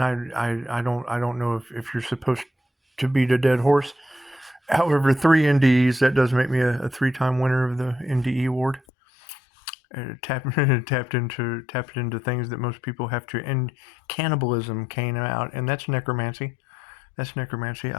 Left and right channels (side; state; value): right; drops out; at 8.8 s